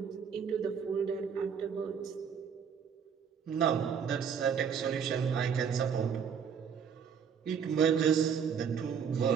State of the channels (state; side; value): quieter; left; 7.1 dB